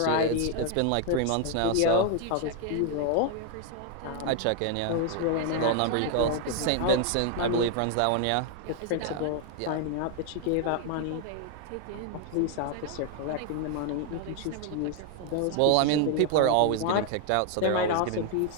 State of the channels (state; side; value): different; both; correlation 0.00